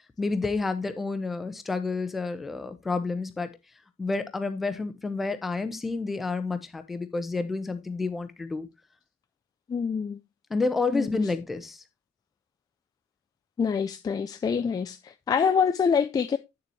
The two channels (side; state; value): right; quieter; 4.5 dB